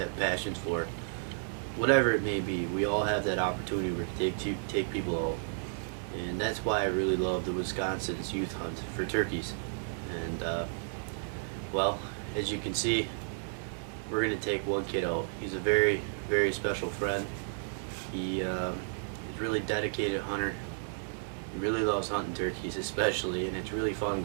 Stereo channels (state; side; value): silent; left; digital silence